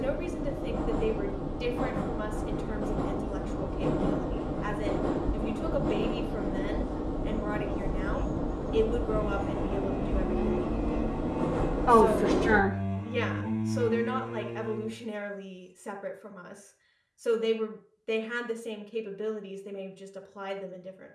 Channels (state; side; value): identical; both; correlation 1.00